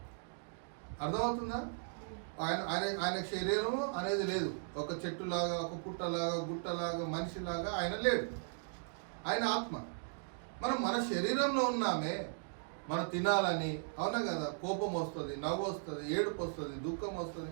అర్థమవుతుందా? ఆయనకు శరీరము అనేది లేదు. ఒక చెట్టులాగా, ఒక పుట్టలాగా, గుట్టలాగా, మనిషిలాగా ఆయన లేడు. ఆయన ఆత్మ. మన శరీరంలో ఉన్నామే, మనం తినాలని, అవునా కదా? కోపం వస్తుంది, నవ్వు వస్తుంది, ఏడుపు వస్తుంది, దుఃఖం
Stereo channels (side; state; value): left; silent; digital silence